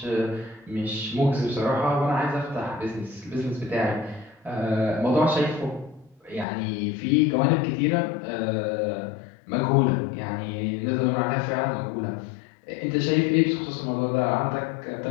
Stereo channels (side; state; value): right; drops out; at 6.5 s